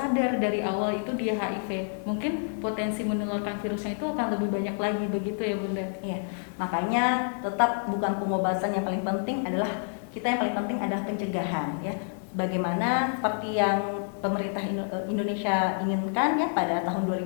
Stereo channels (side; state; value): right; silent; 59 dB below the other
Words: dari awal itu dia HIV. Mungkin potensi menularkan virusnya itu akan lebih banyak lagi, begitu ya Bunda? Iya, makanya tetap bukan pengobatan yang paling penting, adalah kita yang paling penting adalah pencegahan ya. Bagaimana seperti yang pemerintah Indonesia inginkan ya, pada tahun